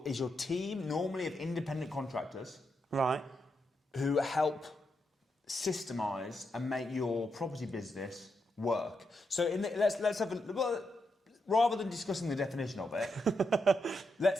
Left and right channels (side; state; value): both; normal; correlation 0.83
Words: team normally of independent contractors, right, who help systemize and make your property business work. So let's have rather than discussing the definition of it,